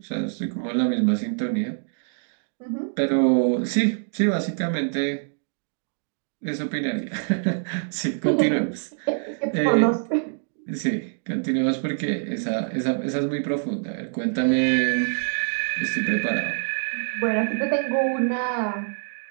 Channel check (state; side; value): silent; left; digital silence